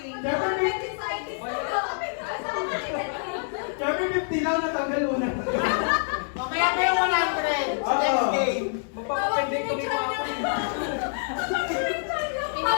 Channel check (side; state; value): right; silent; digital silence